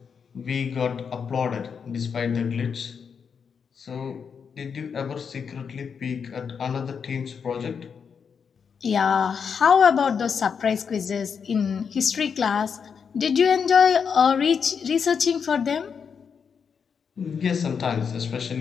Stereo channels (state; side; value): quieter; right; 6.5 dB